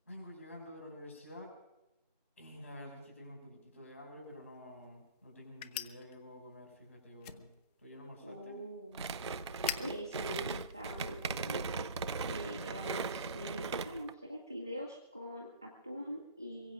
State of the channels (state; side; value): inverted; both; correlation -0.40